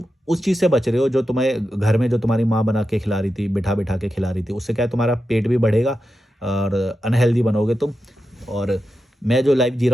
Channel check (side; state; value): both; normal; correlation 0.89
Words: उस चीज़ से बच रहे हो जो तुम्हें घर में जो तुम्हारी माँ बना के खिला रही थी, बिठा-बिठा के खिला रही थी। उससे क्या है, तुम्हारा पेट भी बढ़ेगा और अनहेल्दी बनोगे तुम। और मैं जो लाइफ़ जी